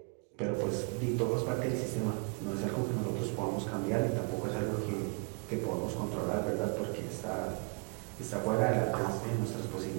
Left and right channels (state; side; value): quieter; left; 37.7 dB